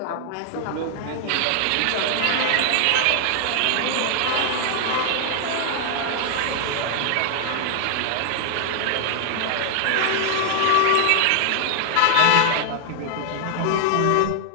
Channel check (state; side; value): different; both; correlation 0.00